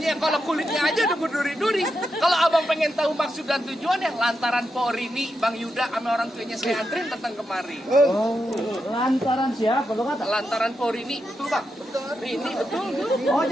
kalau kulitnya aja udah berduri-duri. Kalau abang pengen tahu maksud dan tujuannya, lantaran Porini, Bang Yuda sama orang tuanya saya antrin datang kemari. Oh, lantaran siapa lo kata? Lantaran Porini, betul bang? Betul. Rini, betul. Oh,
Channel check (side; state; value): both; normal; correlation 0.86